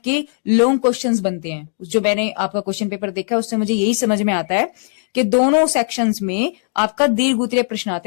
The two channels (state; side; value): silent; right; digital silence